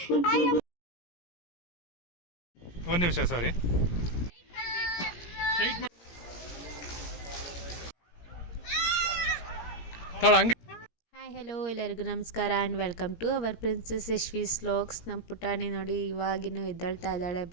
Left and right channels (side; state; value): right; late; 17 ms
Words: ನಿಮಿಷ ಸಾರಿ. ಹಾಯ್ ಹಲೋ ಎಲ್ಲರಿಗೂ ನಮಸ್ಕಾರ and welcome to our princess Yashvi's vlogs. ನಮ್ಮ ಪುಟಾಣಿ ನೋಡಿ ಇವಾಗಿನೂ ಎದ್ದೇಳ್ತಾ ಇದ್ದಾಳೆ.